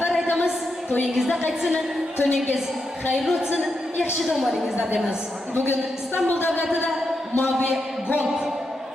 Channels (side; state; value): both; normal; correlation 0.84